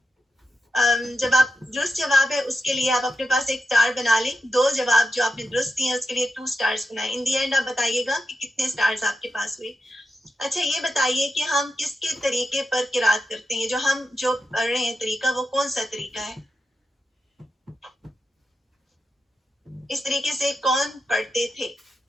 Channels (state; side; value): normal; both; correlation 0.89